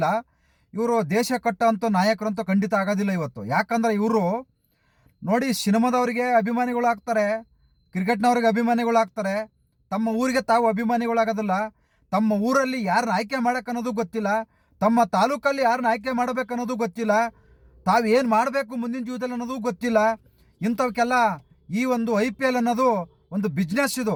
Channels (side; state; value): both; identical; correlation 1.00